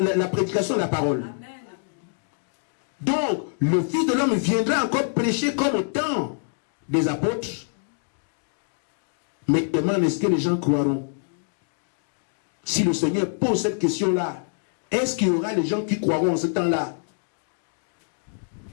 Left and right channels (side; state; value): right; silent; digital silence